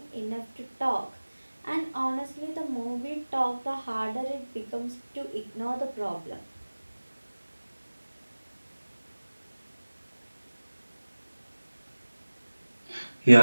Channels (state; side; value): inverted; both; correlation -1.00